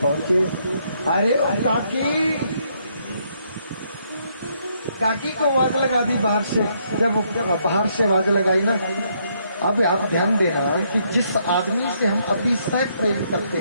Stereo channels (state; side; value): inverted; both; correlation -0.72